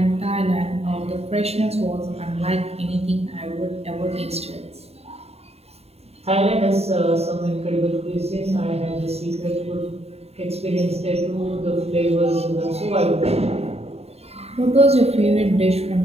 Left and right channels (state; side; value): late; left; 0.30 ms